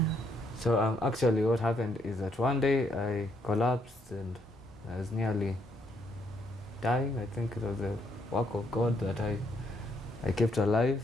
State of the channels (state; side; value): normal; both; correlation 0.73